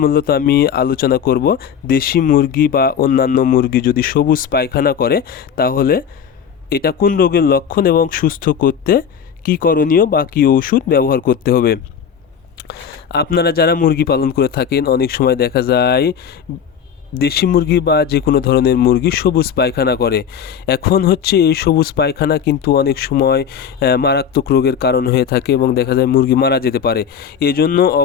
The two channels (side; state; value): right; quieter; 7.7 dB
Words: মূলত আমি আলোচনা করব দেশি মুরগি বা অন্যান্য মুরগি যদি সবুজ পায়খানা করে তাহলে এটা কোন রোগের লক্ষণ এবং সুস্থ করতে কী করণীয় বা কী ওষুধ ব্যবহার করতে হবে। আপনারা যারা মুরগি পালন করে থাকেন অনেক সময় দেখা যায় দেশি মুরগি বা যে কোনো ধরনের মুরগি সবুজ পায়খানা করে। এখন হচ্ছে এই সবুজ পায়খানা কিন্তু অনেক সময় মারাত্মক রোগের কারণ হয়ে থাকে এবং দেখা যায় মুরগি মারা যেতে পারে। এজন্য